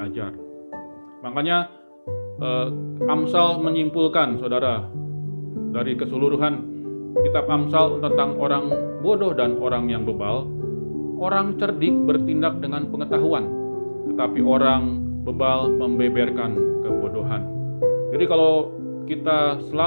Makanya Amsal menyimpulkan, saudara, dari keseluruhan kitab Amsal tentang orang bodoh dan orang yang bebal, orang cerdik bertindak dengan pengetahuan, tetapi orang bebal membeberkan kebodohan. Jadi kalau kita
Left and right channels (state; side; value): inverted; both; correlation -1.00